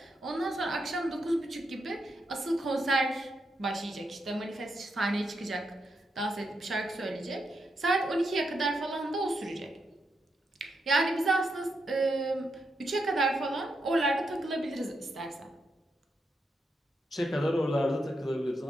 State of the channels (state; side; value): normal; both; correlation 0.83